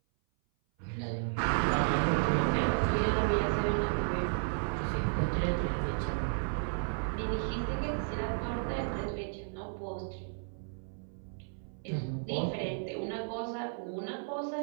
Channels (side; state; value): left; silent; 56 dB below the other